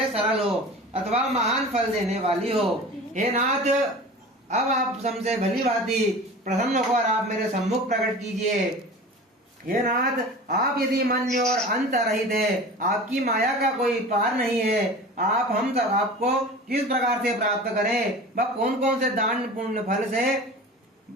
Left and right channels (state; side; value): normal; both; correlation 0.37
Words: सरल हो अथवा महान फल देने वाली हो। हे नाथ, अब आप हमसे भली भांति प्रसन्न होकर आप मेरे सम्मुख प्रकट कीजिए। हे नाथ, आप यदि मन और अंत रहित है, आपकी माया का कोई पार नहीं है, आप हम सब आपको किस प्रकार से प्राप्त करें, वह कौन कौन से दान पुण्य फल से